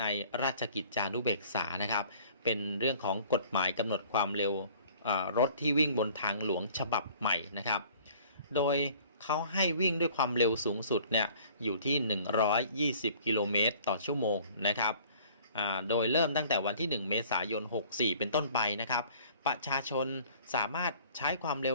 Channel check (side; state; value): both; inverted; correlation -0.52